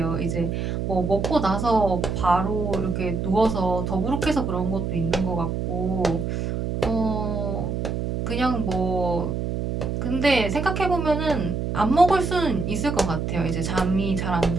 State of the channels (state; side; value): noise; right; hum, 2 dB below the sound